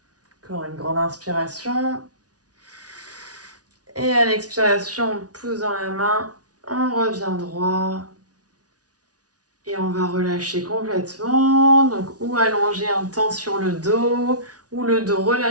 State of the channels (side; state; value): left; late; 0.68 ms